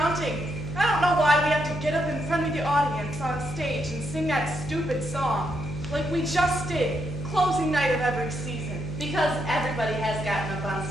I don't know why we have to get up in front of the audience on stage and sing that stupid song. Like we just did, closing night of every season. Because everybody has gotten up on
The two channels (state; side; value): noise; left; hum, 9 dB below the sound